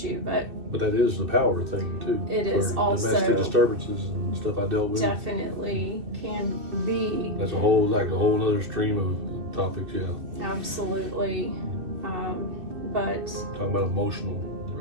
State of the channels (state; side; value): late; left; 2.6 ms